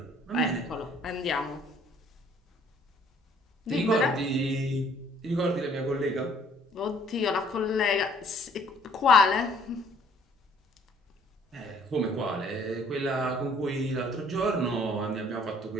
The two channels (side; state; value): both; normal; correlation 0.59